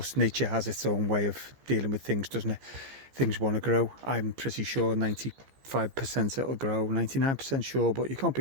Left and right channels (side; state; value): left; late; 15 ms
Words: nature has its own way of dealing with things, doesn't it? Things want to grow. I'm pretty sure 95% it'll grow, 99% sure, but you can't